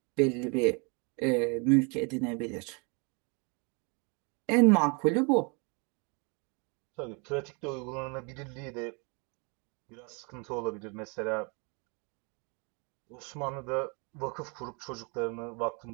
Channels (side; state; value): left; quieter; 33.4 dB